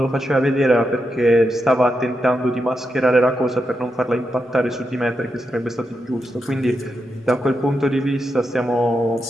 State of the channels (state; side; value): normal; both; correlation 0.86